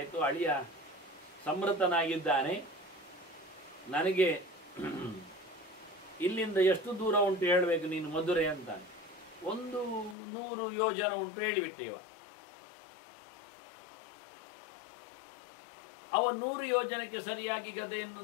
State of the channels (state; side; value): drops out; right; at 10.2 s